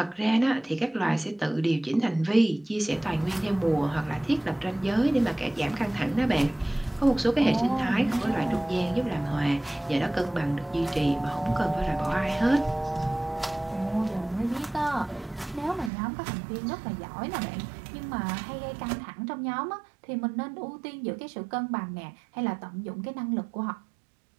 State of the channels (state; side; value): drops out; left; at 15.9 s